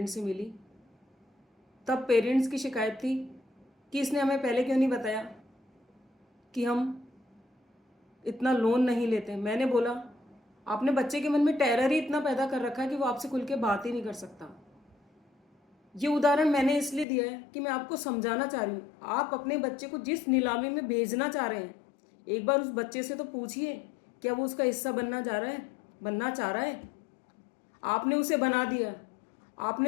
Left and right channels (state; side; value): drops out; right; at 17.1 s